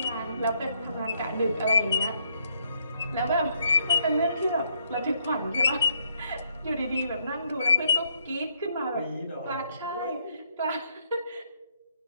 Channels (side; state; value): both; inverted; correlation -0.74